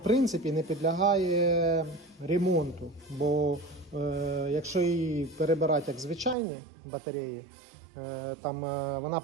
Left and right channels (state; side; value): drops out; left; at 6.4 s